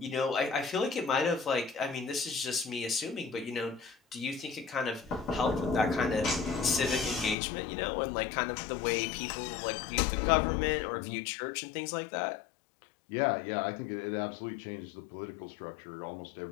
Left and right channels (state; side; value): drops out; right; at 7.4 s